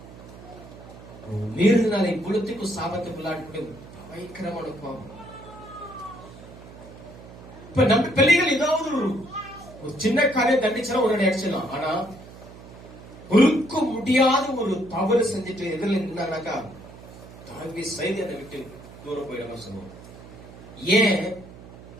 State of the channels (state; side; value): noise; right; hum, 17 dB below the sound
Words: மீறினாலே குலத்துக்கும் சாபத்துக்குள்ளாட்டு பயங்கரமான கோபம். இப்ப நம்ம பிள்ளைகள் ஏதாவது ஒரு சின்ன காரியம் தண்டிச்சா உடனே அடிச்சிடலாம். ஆனா பொறுக்க முடியாத ஒரு தவறு செஞ்சுட்டு எதிரில் இருந்தாங்கனாக்கா தாங்கி செய்து அதை விட்டு தூரம் போயிடாம சொல்லுவோம். ஏன்?